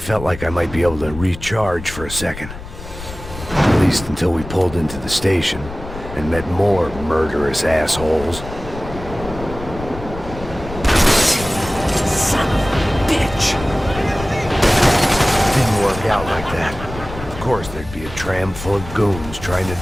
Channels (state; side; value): noise; left; rumble, 12 dB below the sound